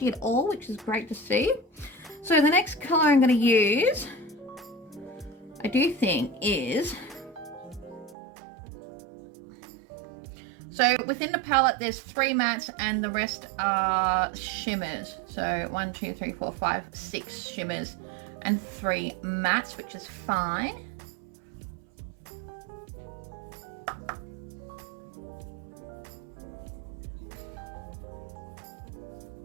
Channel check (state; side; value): drops out; left; at 8.2 s